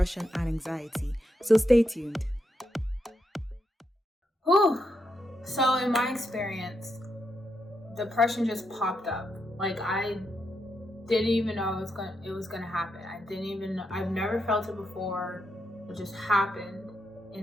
and anxiety. So stay tuned. So in my experience, depression just popped up. Like, I didn't even know it was gonna happen. I've never felt it before. It just happened,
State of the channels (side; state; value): both; normal; correlation 0.82